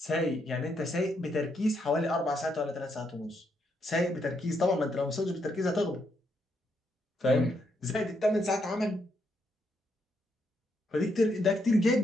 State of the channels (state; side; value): normal; both; correlation 0.77